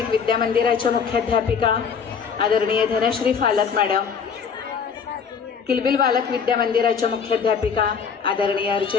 विद्यामंदिराच्या मुख्याध्यापिका आदरणीय धनश्री फालक मॅडम, किलबिल बालक विद्यामंदिराच्या मुख्याध्यापिका आदरणीय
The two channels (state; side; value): quieter; right; 6.4 dB